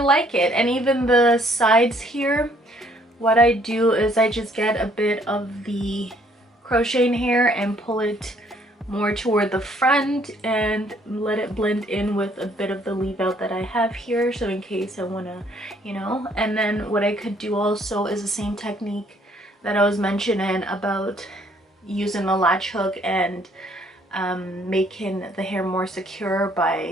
it. And even the sides here, what I do is I just get a bit of the crocheting hair and pull it more toward the front and let it blend in with a bit of the leave out that I have here, so in case I want to, you know. And then what I could do also is the same technique that I was mentioning about using the latch hook and making the hair more secure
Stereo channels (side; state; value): both; normal; correlation 0.64